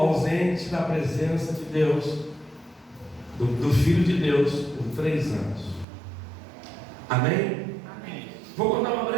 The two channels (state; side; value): drops out; left; at 5.9 s